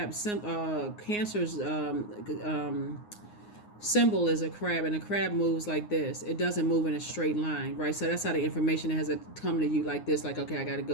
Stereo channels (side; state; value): right; late; 9.6 ms